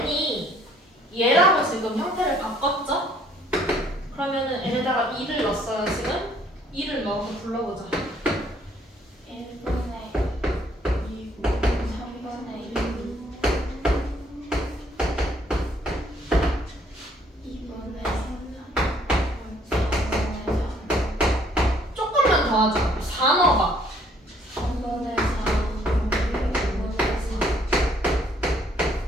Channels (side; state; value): both; normal; correlation 0.63